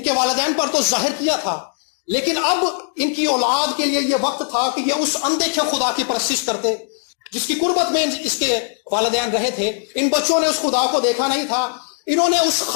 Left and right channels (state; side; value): silent; right; 66 dB below the other